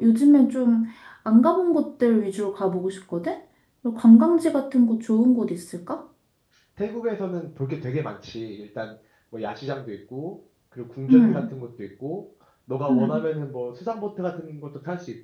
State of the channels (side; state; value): both; identical; correlation 1.00